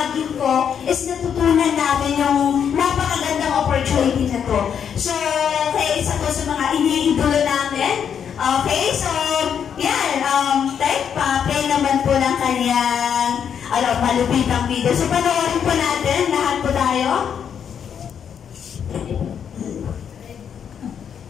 ko is natutunan namin yung napakagandang opportunity na to. So, okay, isa to sa mga iniidolo namin. Okay, so, yan, play naman po ng kanyang malupitang video. So, panoorin po natin, lahat po tayo.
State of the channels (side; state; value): right; quieter; 8.0 dB